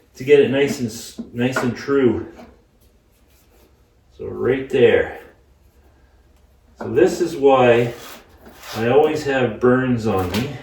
to get it nice and true. So right there. So this is why I always have burns on me.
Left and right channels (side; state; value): both; identical; correlation 1.00